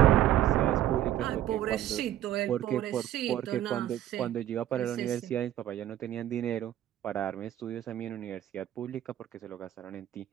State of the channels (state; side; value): quieter; left; 12.4 dB